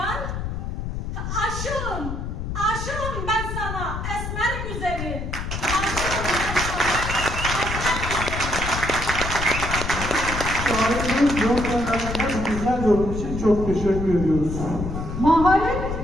Aşığım ben sana esmer güzeli. Şairimiz Yolkanlar'ın güzel yorum için çok teşekkür ediyoruz. Maharet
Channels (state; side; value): noise; left; rumble, 5 dB below the sound